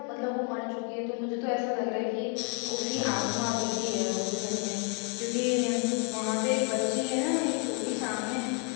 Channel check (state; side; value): quieter; right; 28.9 dB